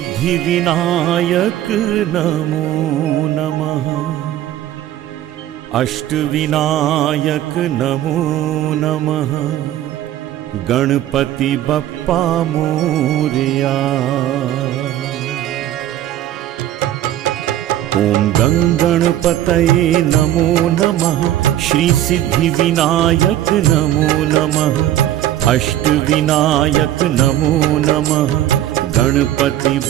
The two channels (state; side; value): quieter; left; 12.8 dB